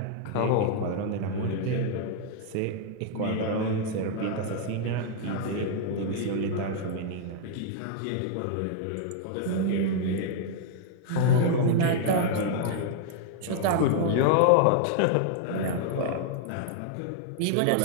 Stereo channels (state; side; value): different; both; correlation 0.00